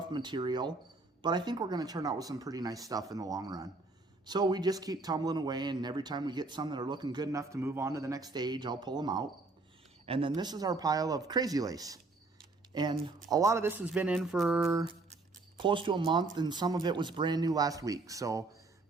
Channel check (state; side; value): quieter; left; 3.4 dB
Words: material, but I think we're going to turn out with some pretty nice stuff in the long run. So we just keep tumbling away, and every time we get some that are looking good enough to move on to the next stage, I'll pull them out. And then this is our pile of crazy lace. And a lot of this has been in for close to a month, and some of it was brand new last week. So